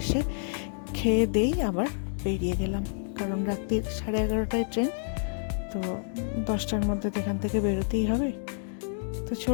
এসে খেয়ে দেই আবার বেরিয়ে গেলাম, কারণ রাত্রির 11:30টায় ট্রেন, তো 10টার মধ্যে এখান থেকে বেরোতেই হবে। তো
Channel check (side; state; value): right; silent; digital silence